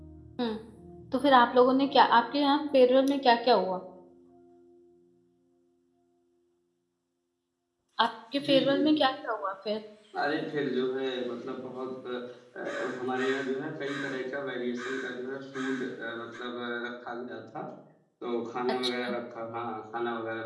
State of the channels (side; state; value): both; identical; correlation 1.00